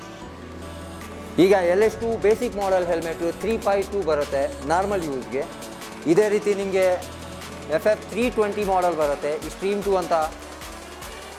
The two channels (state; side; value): identical; both; correlation 1.00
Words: ಈಗ LS2 ಬೇಸಿಕ್ ಮಾಡೆಲ್ ಹೆಲ್ಮೆಟ್ 352 ಬರುತ್ತೆ ನಾರ್ಮಲ್ ಯೂಸ್ಗೆ. ಇದೇ ರೀತಿ ನಿಮಗೆ FF 320 ಮಾಡೆಲ್ ಬರುತ್ತೆ, ಸ್ಟ್ರೀಮ್ 2 ಅಂತ